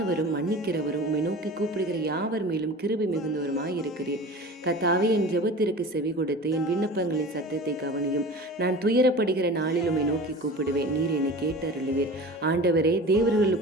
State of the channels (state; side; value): normal; both; correlation 0.36